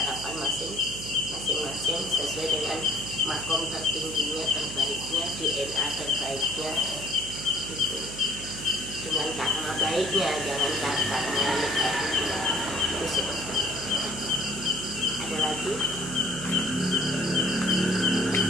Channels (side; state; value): right; noise; hum, 11 dB below the sound